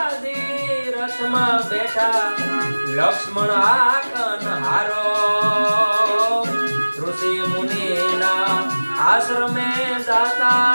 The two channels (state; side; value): inverted; both; correlation -1.00